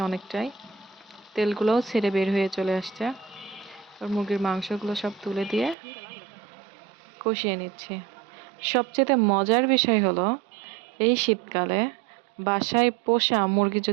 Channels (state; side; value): drops out; left; at 5.8 s